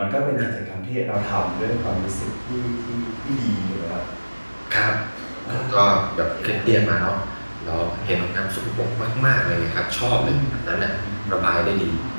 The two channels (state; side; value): inverted; both; correlation -1.00